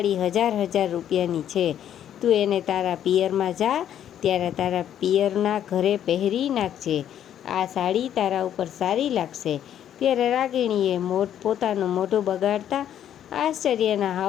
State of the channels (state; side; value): quieter; right; 10.3 dB